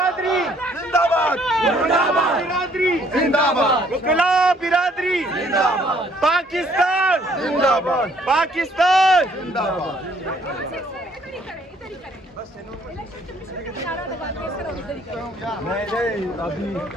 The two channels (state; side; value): normal; both; correlation 0.63